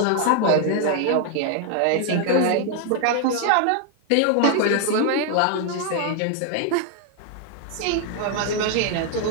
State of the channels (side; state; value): both; different; correlation 0.00